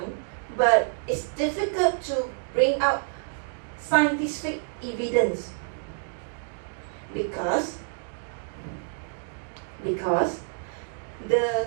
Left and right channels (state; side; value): silent; left; digital silence